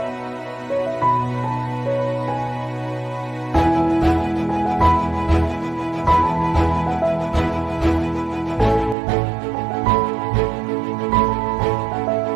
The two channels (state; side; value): drops out; left; at 9.0 s